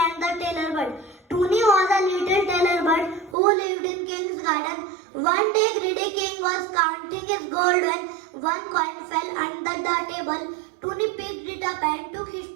and the Tailor Bird. Toonie was a little tailor bird who lived in King's garden. One day greedy King was counting his gold when one coin fell under the table. Toonie picked it up and took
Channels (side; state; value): left; drops out; at 3.4 s